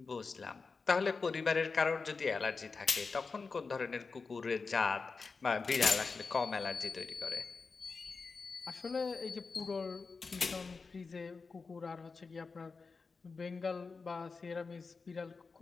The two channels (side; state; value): right; quieter; 4.5 dB